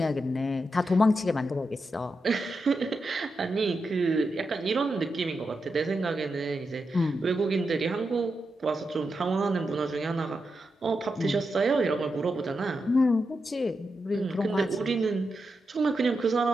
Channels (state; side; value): normal; both; correlation 0.87